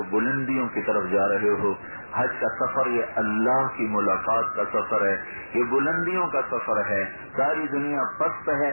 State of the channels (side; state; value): both; inverted; correlation -1.00